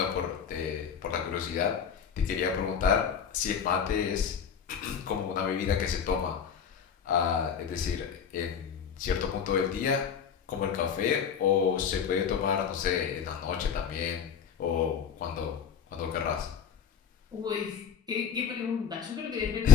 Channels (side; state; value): right; quieter; 7.3 dB